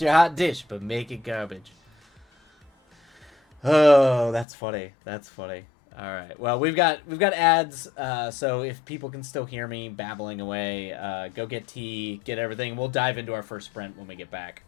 hot dish, but make it garbage. Oh, that's funny. That's funny. All right. Well, we've got ads. So if people can still hear me babbling away, go get tea, get everything. We'll dive into our first sprint when we get back.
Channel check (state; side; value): drops out; right; at 4.5 s